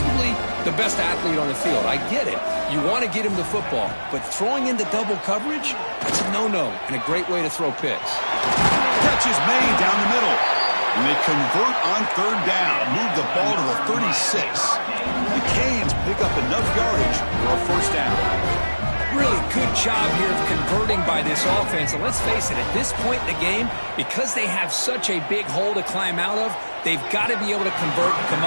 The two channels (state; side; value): inverted; both; correlation -1.00